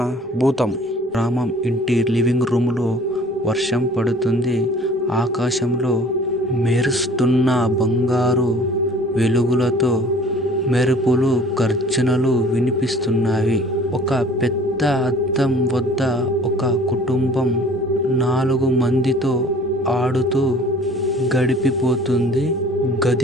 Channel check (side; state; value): both; normal; correlation 0.50